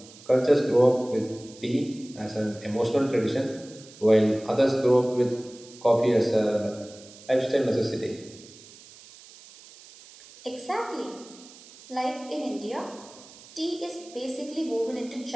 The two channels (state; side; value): noise; right; hiss, 21 dB below the sound